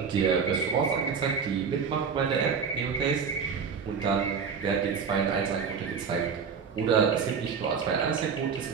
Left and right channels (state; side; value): quieter; left; 6.1 dB